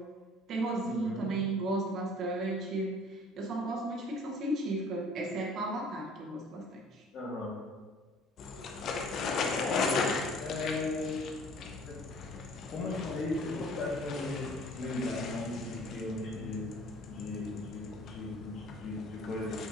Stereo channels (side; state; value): both; normal; correlation 0.51